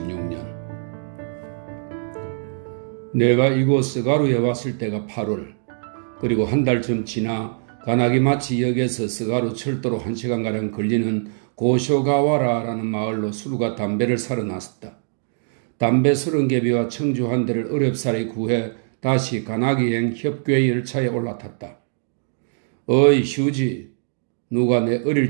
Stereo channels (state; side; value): silent; left; digital silence